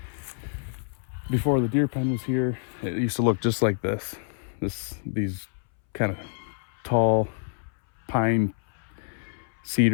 before the deer pen was here, it used to look just like this. These kind of tall pine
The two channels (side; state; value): right; silent; 60 dB below the other